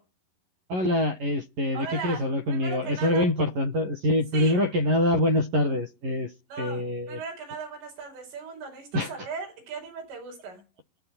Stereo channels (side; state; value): left; late; 11 ms